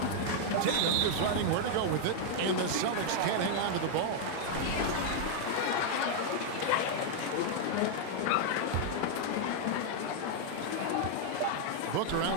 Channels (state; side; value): different; both; correlation 0.00